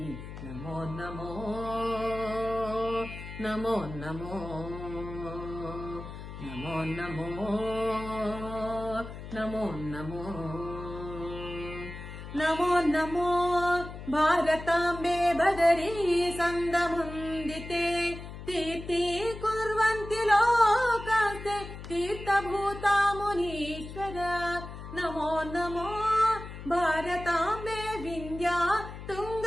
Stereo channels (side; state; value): left; noise; hum, 11 dB below the sound